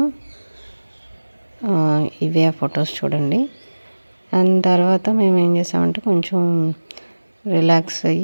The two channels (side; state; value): both; inverted; correlation -1.00